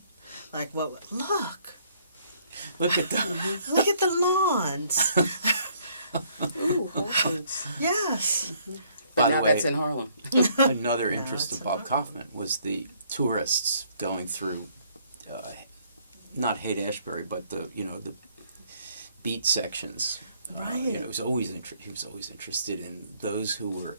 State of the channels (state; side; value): inverted; both; correlation -0.64